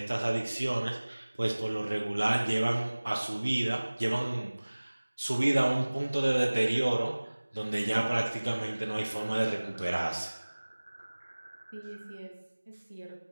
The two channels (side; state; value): both; inverted; correlation -1.00